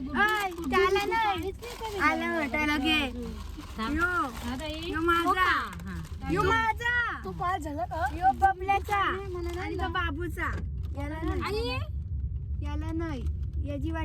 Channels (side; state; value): both; identical; correlation 1.00